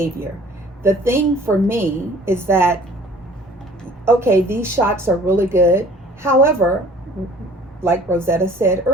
The thing for me is that, okay, these shots are really good. However, like Rosetta said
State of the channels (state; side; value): normal; both; correlation 0.51